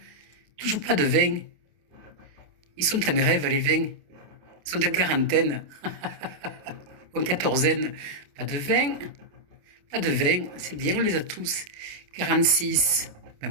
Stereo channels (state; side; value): late; left; 28 ms